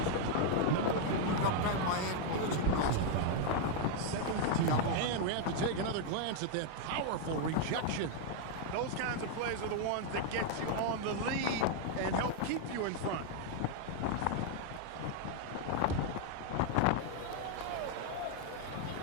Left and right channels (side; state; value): both; different; correlation 0.00